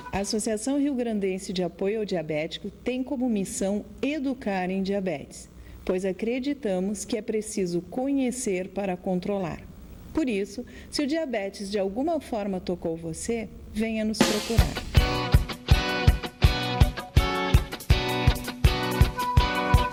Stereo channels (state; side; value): identical; both; correlation 1.00